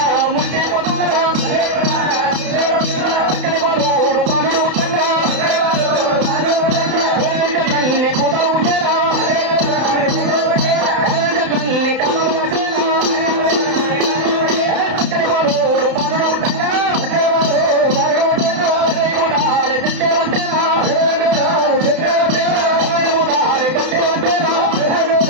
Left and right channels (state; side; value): late; left; 31 ms